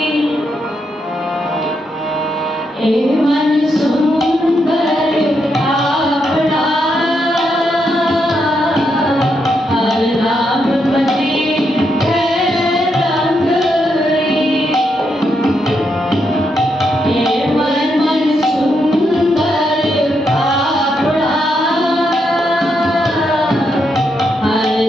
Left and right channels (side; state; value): both; normal; correlation 0.80